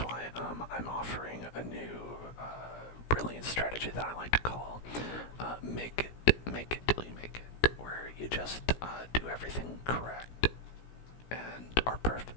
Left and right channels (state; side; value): late; right; 17 ms